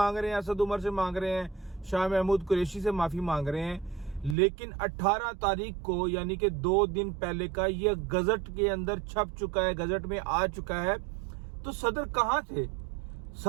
रहे हैं, असद उमर से मांग रहे हैं, शाह महमूद कुरैशी से माफ़ी मांग रहे हैं। लेकिन 18 तारीख को, यानी कि 2 दिन पहले का, ये गजट के अंदर छप चुका है, गजट में आ चुका है। तो सदर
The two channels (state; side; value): drops out; left; at 4.4 s